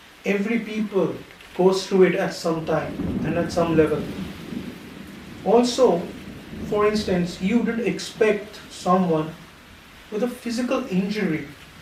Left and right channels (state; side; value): identical; both; correlation 1.00